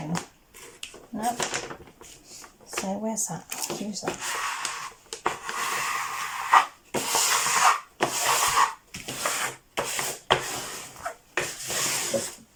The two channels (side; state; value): both; identical; correlation 1.00